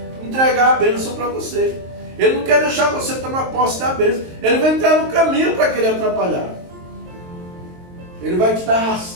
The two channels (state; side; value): late; left; 23 ms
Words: entregar a bênção para você. Ele não quer deixar você tomar posse da bênção. Ele vai entrar no caminho para querer atrapalhar. Ele vai te dar